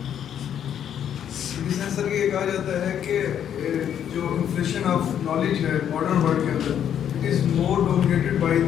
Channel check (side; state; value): right; quieter; 9.4 dB